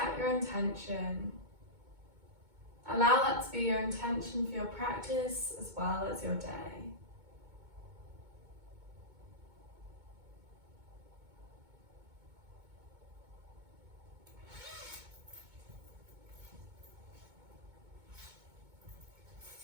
your intention, allow that to be your intention for your practice as well as your day.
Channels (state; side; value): late; left; 2.2 ms